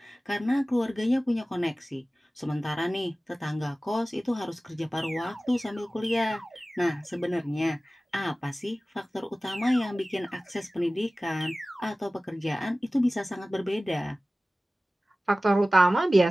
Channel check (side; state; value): both; normal; correlation 0.97